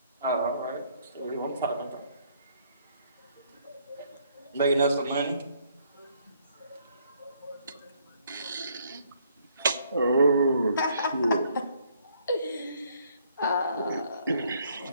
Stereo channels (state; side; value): inverted; both; correlation -0.67